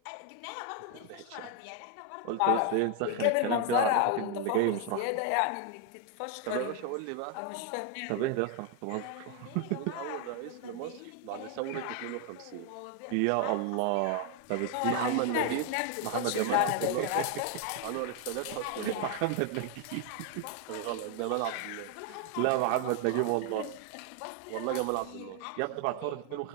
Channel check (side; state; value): both; different; correlation 0.01